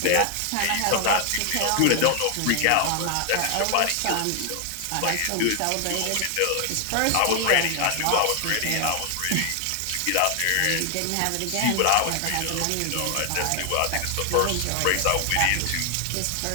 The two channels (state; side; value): different; both; correlation 0.00